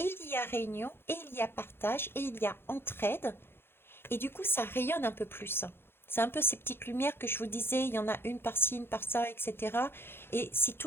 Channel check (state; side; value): late; right; 0.11 ms